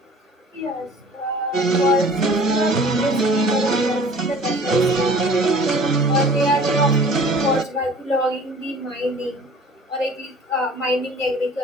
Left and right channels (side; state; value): both; normal; correlation 0.48